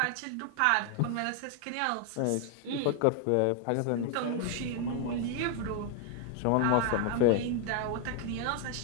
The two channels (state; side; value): different; both; correlation 0.00